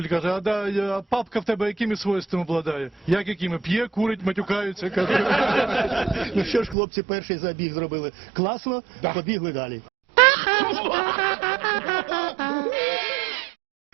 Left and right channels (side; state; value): left; drops out; at 6.8 s